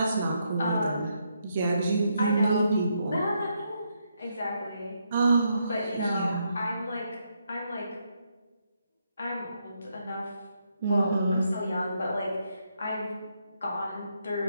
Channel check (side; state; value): both; inverted; correlation -0.78